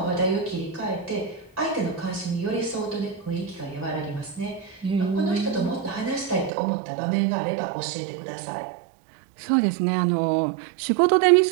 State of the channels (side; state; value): left; drops out; at 6.5 s